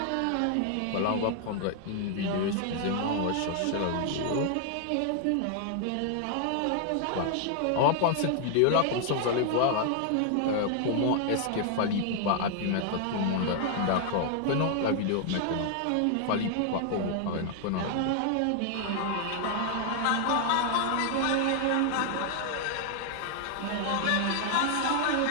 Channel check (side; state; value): both; different; correlation 0.00